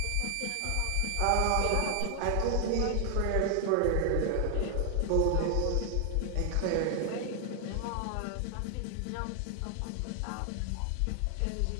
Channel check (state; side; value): different; both; correlation 0.00